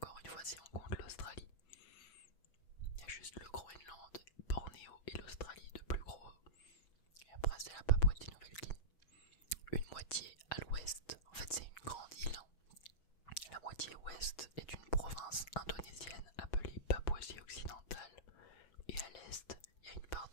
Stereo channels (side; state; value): right; late; 6.1 ms